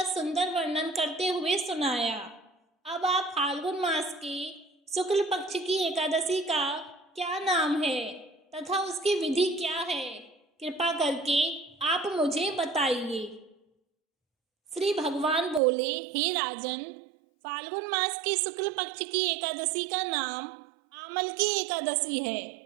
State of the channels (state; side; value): drops out; left; at 15.6 s